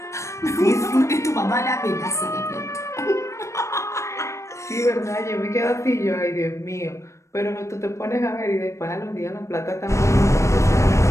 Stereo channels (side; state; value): right; late; 0.14 ms